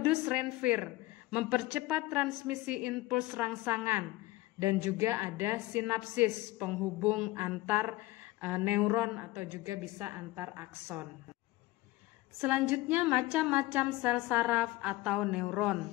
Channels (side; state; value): right; quieter; 18.3 dB